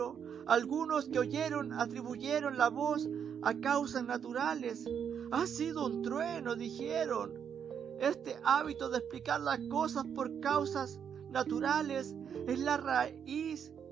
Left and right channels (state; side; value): quieter; left; 7.8 dB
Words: algunos que oyeron atribuyeron la voz a causas naturales. Ha sido un trueno, dijeron. Este hábito de explicar las cosas por causas naturales es la raíz